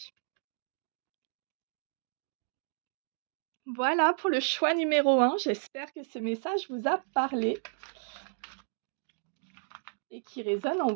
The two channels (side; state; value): left; silent; digital silence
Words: Voilà pour le choix numéro 1. J'espère que ce message vous a parlé et qui résonne en